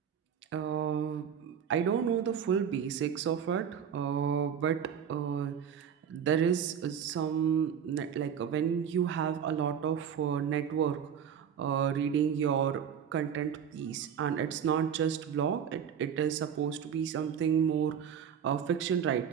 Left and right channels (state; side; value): quieter; left; 8.1 dB